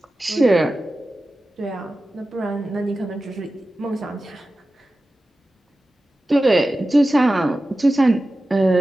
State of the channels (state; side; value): normal; both; correlation 0.94